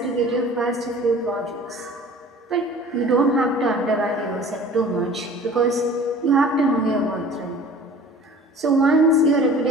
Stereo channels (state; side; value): normal; both; correlation 0.45